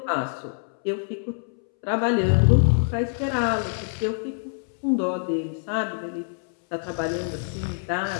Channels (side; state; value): right; silent; 62 dB below the other